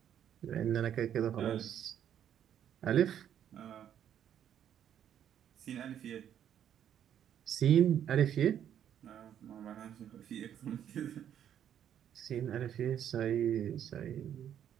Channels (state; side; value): quieter; left; 9.8 dB